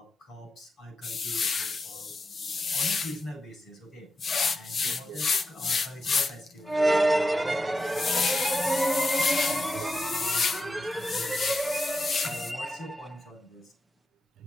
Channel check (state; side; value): normal; both; correlation 0.87